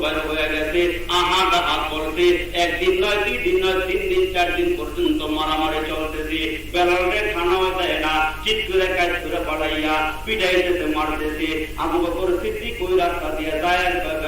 বের হয়ে গেছে, আহাত করতে, একদিন নয়, 2 দিন নয়, 3 দিন 4 দিন পর্যন্ত মারামারি চলতেছে। বেলালে খানাও দেয় না, চিৎ করে কাজ করে পাঠাইয়া পিটাইতেছে, মারতেছে। আবু বকর সিদ্দিক ওই রাস্তা দিয়ে যায়,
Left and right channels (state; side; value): identical; both; correlation 1.00